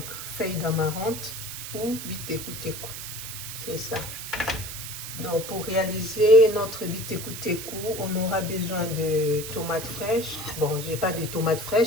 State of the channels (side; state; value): right; noise; hiss, 8 dB below the sound